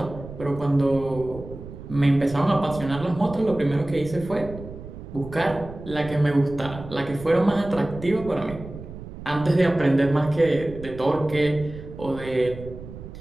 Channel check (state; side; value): noise; right; rumble, 13 dB below the sound